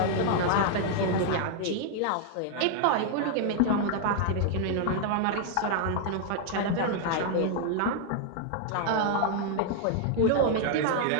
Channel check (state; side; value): different; both; correlation 0.00